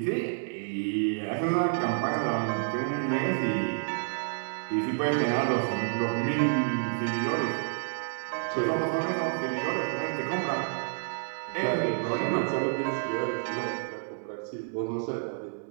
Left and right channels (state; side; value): silent; left; 58 dB below the other